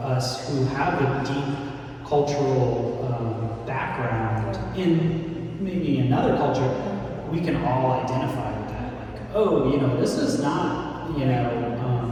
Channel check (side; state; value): both; identical; correlation 1.00